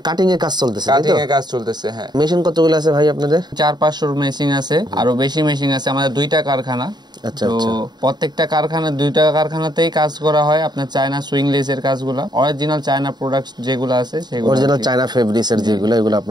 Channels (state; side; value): late; left; 0.20 ms